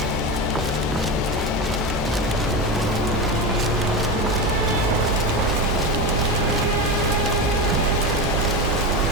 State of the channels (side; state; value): both; normal; correlation 0.20